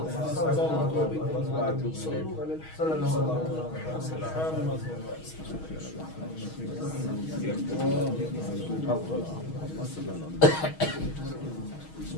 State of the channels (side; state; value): right; late; 6.3 ms